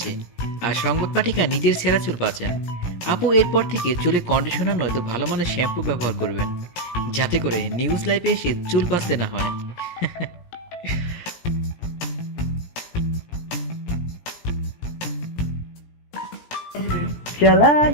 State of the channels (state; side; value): late; right; 17 ms